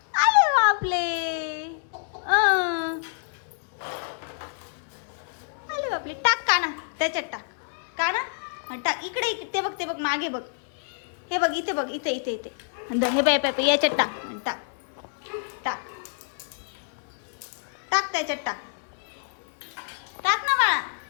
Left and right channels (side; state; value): right; silent; digital silence